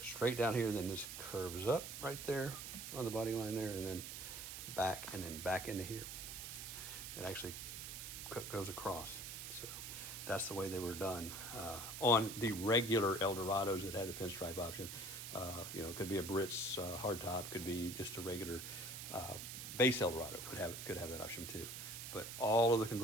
straight down here, then this curves up right there on the body line there, and then back into here. It actually goes across. So that's the way they were done. On the regular Eldorados that had the pinstripe option, it could be a Biarritz hardtop, could be just a regular base Eldorado, could have that option too. But all of the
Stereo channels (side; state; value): right; noise; hiss, 8 dB below the sound